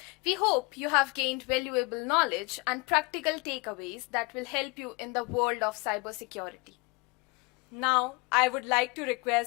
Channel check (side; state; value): right; quieter; 27.7 dB